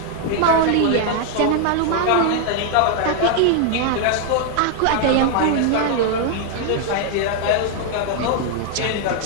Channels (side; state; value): both; different; correlation 0.00